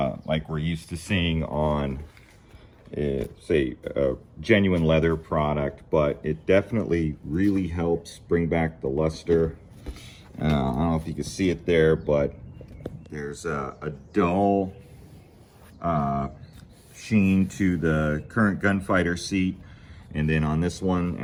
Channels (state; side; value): identical; both; correlation 1.00